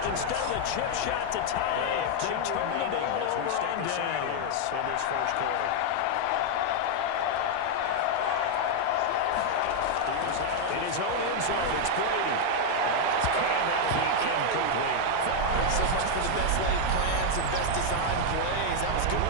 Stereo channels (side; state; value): both; different; correlation 0.00